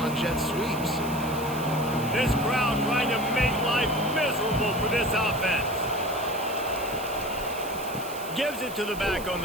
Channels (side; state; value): right; noise; hiss, 14 dB below the sound